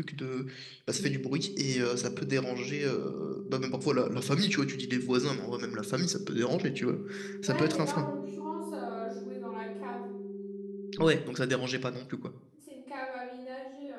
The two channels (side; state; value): both; identical; correlation 1.00